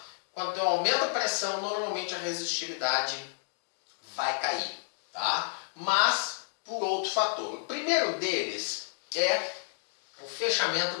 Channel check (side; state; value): right; silent; digital silence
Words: Quando eu aumento a pressão, normalmente a resistividade vai cair, tá? Mas por outro fator. O primeiro deles é o fechamento